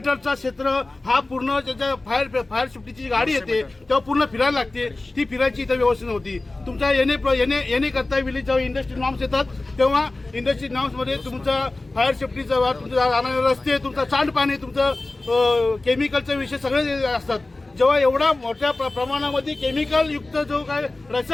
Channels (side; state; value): right; quieter; 3.0 dB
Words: क्षेत्र हा पूर्ण त्याच्या फायर सेफ्टीची गाडी येते तेव्हा पूर्ण फिरायला लागते. ती फिरायची इथं व्यवस्था नव्हती. तुमच्या येणे करता वेळी जेव्हा इंडस्ट्री नॉर्म्स येतात तेव्हा इंडस्ट्री नॉर्म्समध्ये तुमचा फायर सेफ्टीचा तुमचा जाणारे रस्ते, तुमचा सांडपाणी, तुमचं केमिकलचे विषय सगळे असतात. जेव्हा एवढा मोठ्या प्रमाणामध्ये केमिकल युक्त जो काय